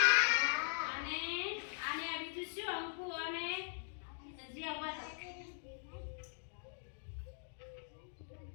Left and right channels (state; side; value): silent; right; digital silence